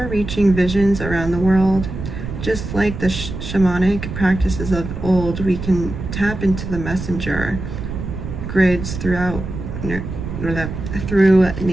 visions around the world. Just like the shamanic practices of old, we can tap into the messenger grids throughout nature.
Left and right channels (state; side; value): noise; right; rumble, 7 dB below the sound